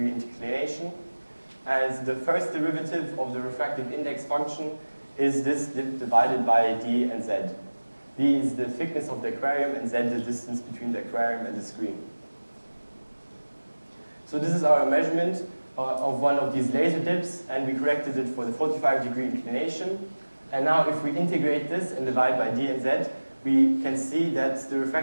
inclination. And the first derivative of the refractive index function is this dip divided by d and z. D is the thickness of the aquarium, and z the distance between the aquarium and the screen. So this is our measurement of one of these laser dips, and we corrected it for the 45-degree inclination. And now if we integrate this and divide by d and z, we can see that the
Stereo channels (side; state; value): both; inverted; correlation -1.00